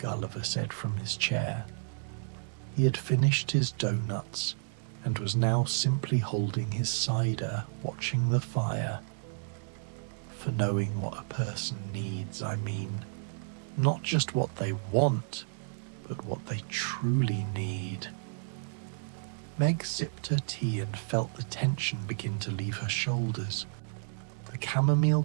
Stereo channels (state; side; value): silent; left; digital silence